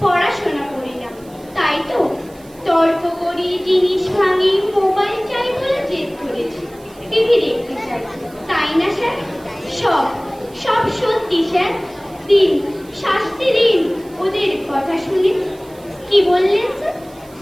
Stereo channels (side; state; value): right; noise; hiss, 26 dB below the sound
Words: পড়াশোনা করি না, তাই তো? তর্ক করি, জিনিস ভাঙি, মোবাইল চাই বলে জেদ ধরেছি, টিভি দেখতে চাই, তাই না স্যার? সব সব সত্যি স্যার। দিন, শাস্তি দিন ওদের কথা শুনে। কি বললেন স্যার?